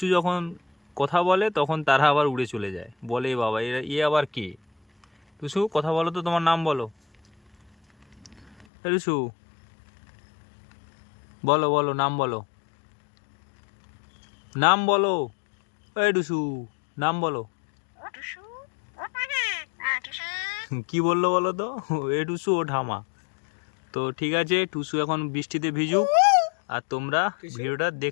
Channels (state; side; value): drops out; right; at 8.7 s